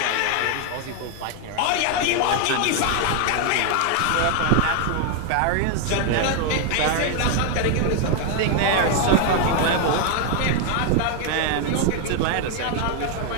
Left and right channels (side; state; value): both; different; correlation 0.00